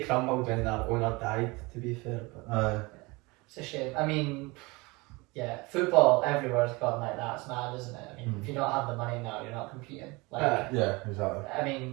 when their owner died, to be fair. But it's a shame. I mean, yeah, football everywhere's gone like that. It's mad, isn't it? I mean, if you don't have the money now, you're not competing. Like, yeah, exactly. I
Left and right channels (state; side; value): quieter; left; 24.7 dB